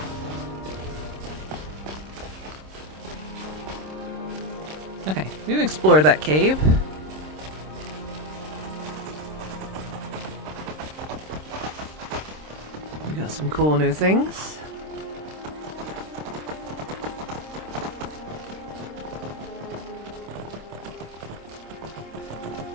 Okay, we've explored that cave. We got some cool new things.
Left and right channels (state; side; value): late; left; 26 ms